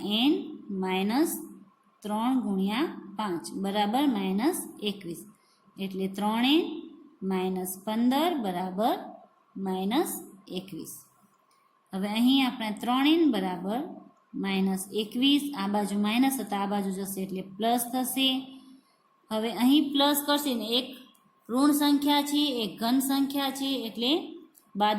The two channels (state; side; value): identical; both; correlation 1.00